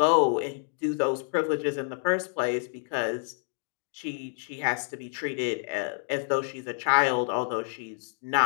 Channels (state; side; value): silent; right; 58 dB below the other